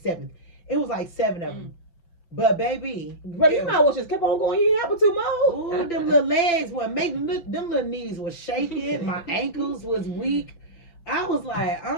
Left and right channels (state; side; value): late; right; 5.9 ms